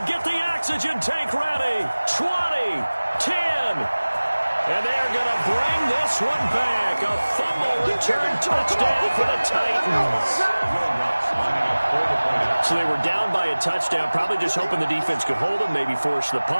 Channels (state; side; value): inverted; both; correlation -1.00